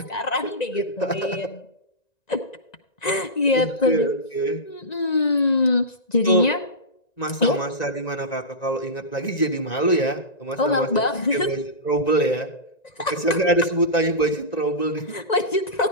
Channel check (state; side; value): late; right; 1.9 ms